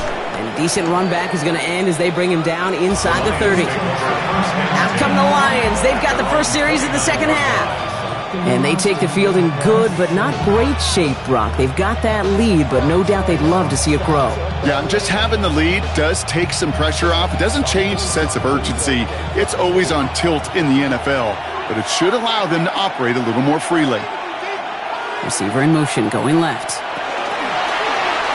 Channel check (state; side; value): identical; both; correlation 1.00